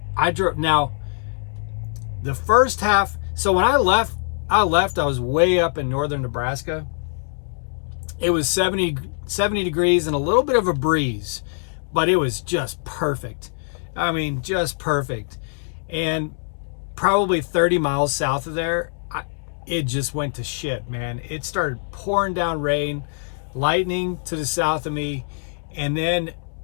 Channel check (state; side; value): silent; right; digital silence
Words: drove, now the first half. So when I left, I was way up in northern Nebraska. It was 70 degrees and a little bit of a breeze, but it was just perfect. I mean, just perfect. And probably 30 miles south of there, it just went to shit, man. It started pouring down rain, lightning to the south of me. And then